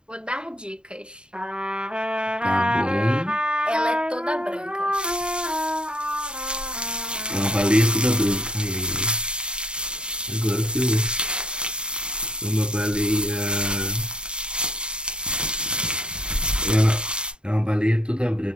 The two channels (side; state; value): left; late; 0.050 ms